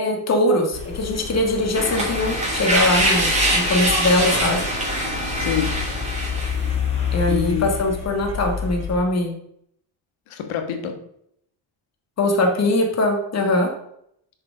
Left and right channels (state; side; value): normal; both; correlation 0.05